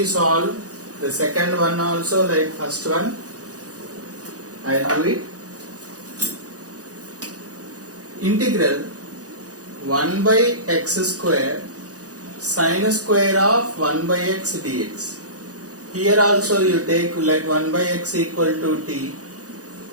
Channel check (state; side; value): late; left; 0.67 ms